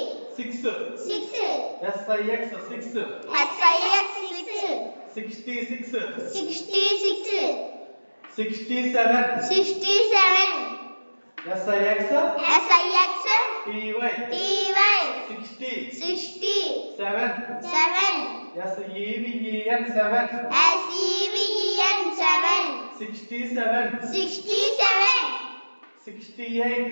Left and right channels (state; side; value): inverted; both; correlation -1.00